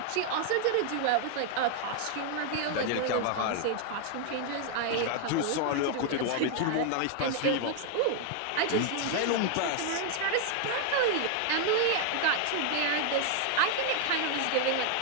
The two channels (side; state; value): both; different; correlation 0.00